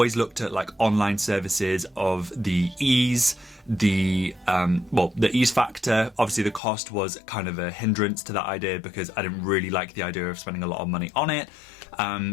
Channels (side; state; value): right; drops out; at 6.6 s